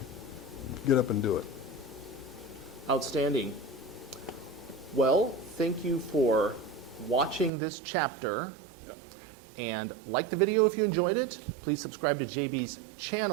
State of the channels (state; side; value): drops out; left; at 7.5 s